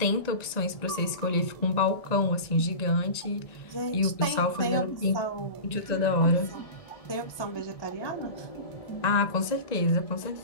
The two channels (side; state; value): right; late; 1.9 ms